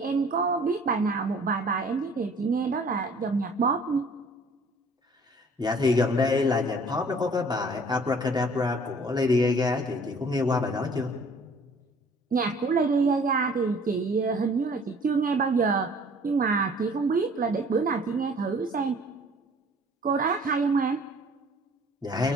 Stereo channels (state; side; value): normal; both; correlation 0.53